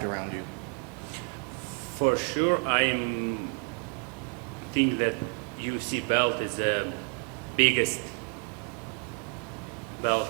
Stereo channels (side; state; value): left; quieter; 38.3 dB